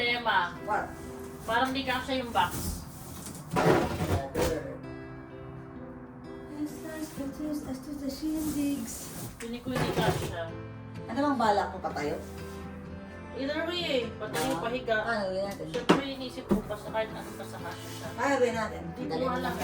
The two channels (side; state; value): both; identical; correlation 1.00